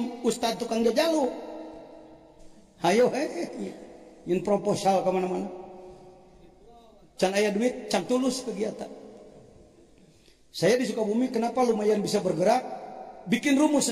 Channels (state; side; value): identical; both; correlation 1.00